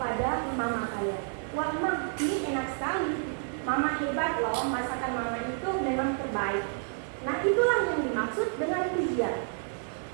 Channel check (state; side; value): silent; left; 57 dB below the other